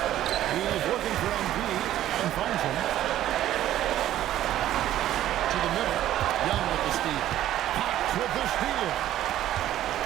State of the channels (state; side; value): quieter; left; 12.7 dB